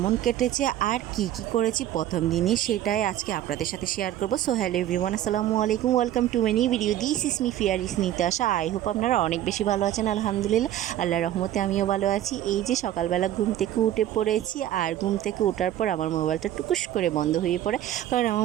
কেটেছে আর কি করেছি প্রথম দিনে সেটাই আজকে আপনাদের সাথে শেয়ার করব। সো হ্যালো এভরিওয়ান, আসসালামু আলাইকুম, welcome to my new video. This is me ফিয়ার ইস নিতাশা। আই হোপ আপনারা অনেক বেশি ভালো আছেন। আলহামদুলিল্লাহ, আল্লাহর রহমতে আমিও ভালো আছি। এই যে সকালবেলা ঘুম থেকে উঠে পড়েছি, আর ঘুম থেকে ওঠার পর আমার মোবাইলটা টুকুস করে বন্ধ হয়ে পড়ে, কারণ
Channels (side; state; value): left; quieter; 12.4 dB